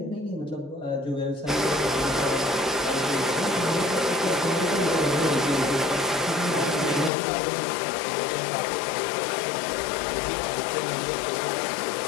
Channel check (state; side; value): drops out; right; at 7.1 s